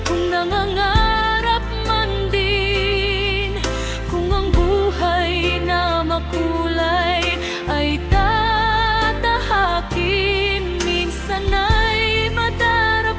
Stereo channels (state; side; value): identical; both; correlation 1.00